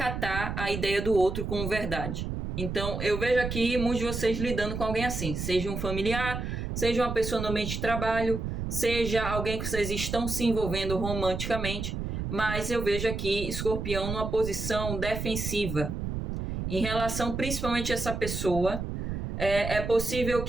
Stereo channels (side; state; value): right; noise; rumble, 4 dB below the sound